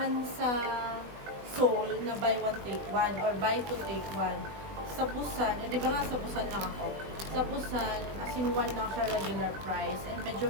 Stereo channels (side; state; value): left; late; 20 ms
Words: sa Seoul na buy one take one or buy two take one. Sa Busan, di ba nga sa Busan lang ako? Sa Busan, as in one lang siya regular price and medyo